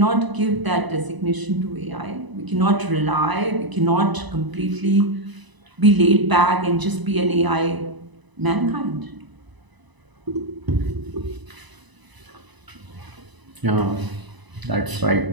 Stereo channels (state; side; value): late; left; 1.0 ms